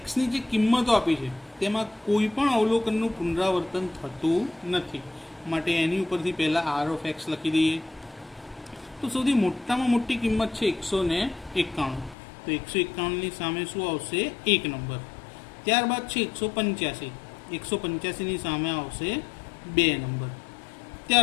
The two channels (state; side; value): drops out; right; at 12.2 s